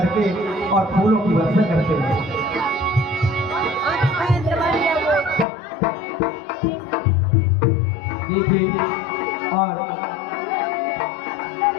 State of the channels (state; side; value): drops out; right; at 5.5 s